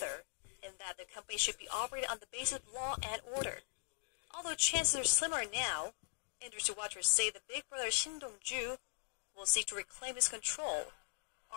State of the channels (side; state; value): right; silent; digital silence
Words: and that the company should be operated on the basis of law and order. Although chances are slimmer now, industry watchers say the big brother Shin Dong-ju will seek to reclaim his control,